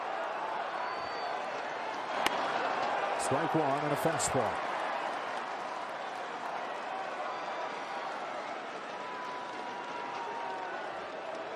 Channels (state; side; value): identical; both; correlation 1.00